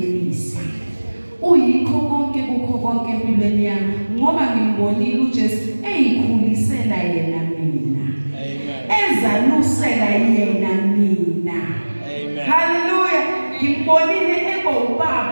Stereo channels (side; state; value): both; inverted; correlation -1.00